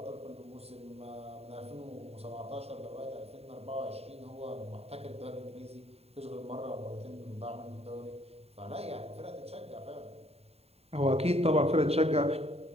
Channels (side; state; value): left; late; 0.30 ms